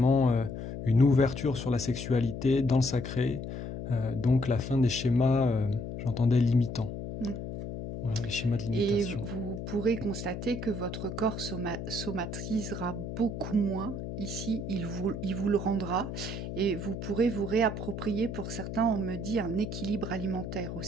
une ouverture sur la sexualité dans le sacré. Donc la fin des schémas, j'entendais limitants. Voilà, les schémas de limitation. Et vous pourrez constater que votre corps somatisera beaucoup moins. Ici, il vous le rendra. Et vous pourrez vous réapproprier, pour certains, on me dit, un équilibre alimentaire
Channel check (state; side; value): noise; left; hum, 6 dB below the sound